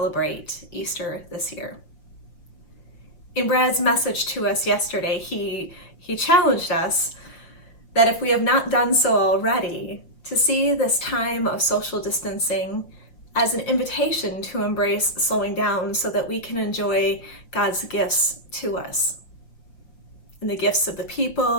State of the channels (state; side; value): late; right; 6.5 ms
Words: Easter this year. In Brad's message to us yesterday, he challenged us that if we have not done so already, to see this time of social distancing as an invitation to embrace slowing down so that we can enjoy God's gifts to us. And the gifts of the